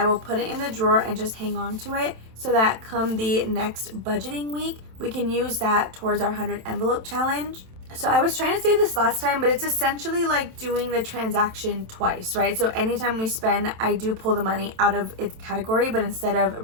will put it in the drawer and just hang on to it so that come the next budgeting week, we can use that towards our 100 envelope challenge. So I was trying to say this last time, but it's essentially like doing the transaction twice, right? So anytime we spend, I do pull the money out of its category, but instead of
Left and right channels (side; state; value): left; late; 27 ms